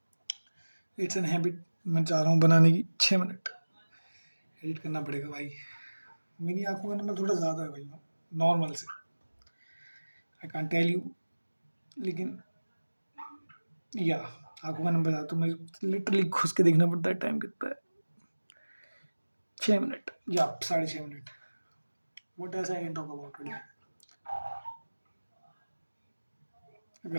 इट्स एन हैबिट, मैं चाह रहा हूँ बनाने की। 6 मिनट एडिट करना पड़ेगा भाई। मेरी आंखों का नंबर थोड़ा ज़्यादा है भाई, नॉर्मल से। आई कांट टेल यू, लेकिन या आंखों का नंबर ज़्यादा, तो मुझे लिटरली घुस के देखना पड़ता है टाइम कितना है। 6 मिनट या 6.5 minute. What else I can talk about today?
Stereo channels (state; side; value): inverted; both; correlation -1.00